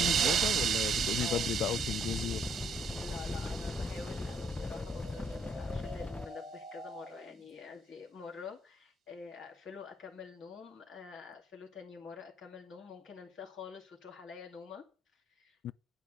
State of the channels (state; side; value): normal; both; correlation 0.67